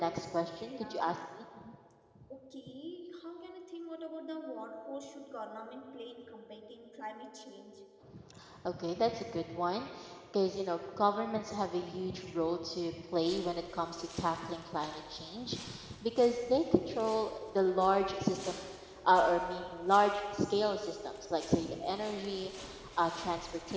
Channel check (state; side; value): identical; both; correlation 1.00